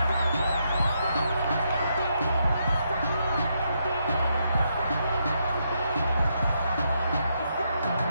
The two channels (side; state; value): both; inverted; correlation -0.79